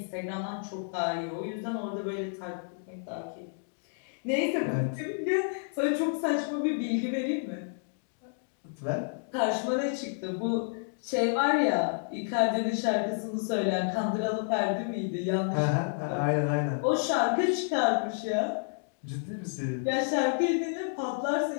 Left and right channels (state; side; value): silent; right; digital silence